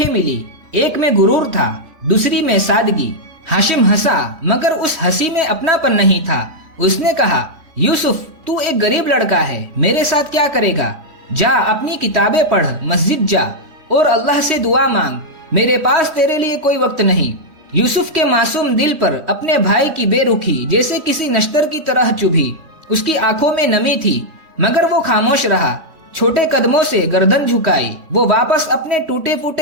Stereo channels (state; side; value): late; left; 3.2 ms